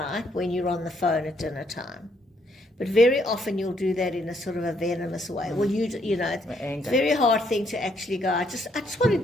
when you're on the phone at dinner time. But very often you'll do that in a sort of a venomous way. Well, it's a very hard thing to actually go, I just want to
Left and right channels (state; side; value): normal; both; correlation 0.71